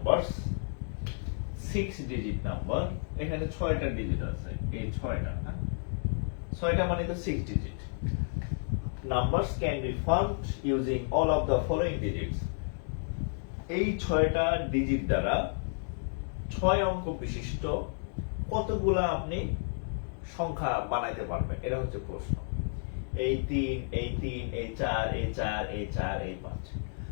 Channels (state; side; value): silent; right; digital silence